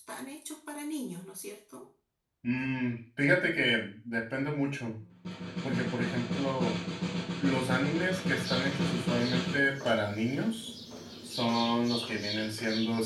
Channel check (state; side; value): identical; both; correlation 1.00